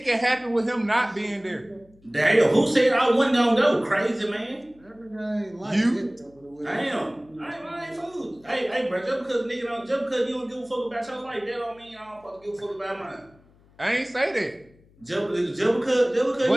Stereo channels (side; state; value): left; noise; hum, 29 dB below the sound